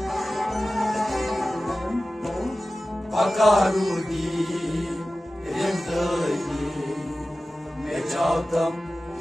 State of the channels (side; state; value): both; normal; correlation 0.95